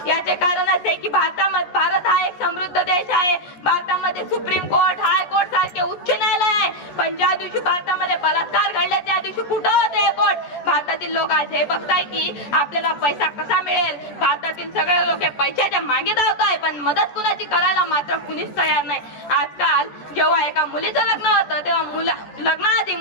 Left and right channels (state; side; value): late; right; 14 ms